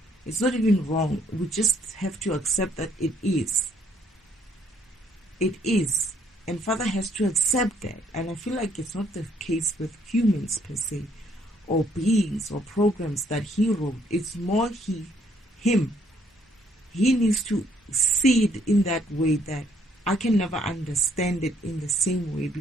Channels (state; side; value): normal; both; correlation 0.67